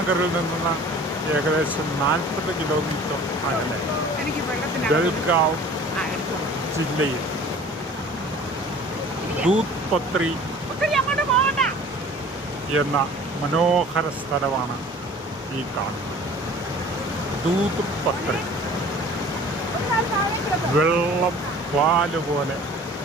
നിന്ന് ഏകദേശം 40 കിലോമീറ്റർ അകലെ ബൽഗാവ് ജില്ലയിൽ ദൂത് പത്രി എന്ന മനോഹര സ്ഥലമാണ് ഈ കാണുന്നത്. ദൂത് പത്രി വെള്ളം പാല് പോലെ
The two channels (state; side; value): normal; both; correlation 0.46